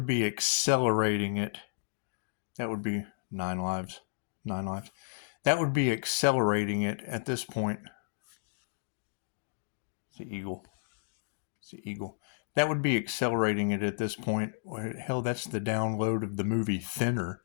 be accelerating it. That would be 9 lives. 9 lives. That would be accelerating it at this point. It's the eagle. It's the eagle. That would be accelerating it at this point. Hell, that's the download of the movie Thinner.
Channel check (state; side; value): silent; right; digital silence